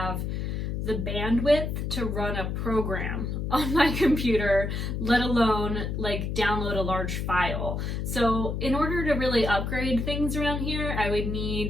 the bandwidth to run a program on my computer, let alone like download a large file. So in order to really upgrade things around here, I would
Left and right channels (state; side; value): noise; left; hum, 2 dB below the sound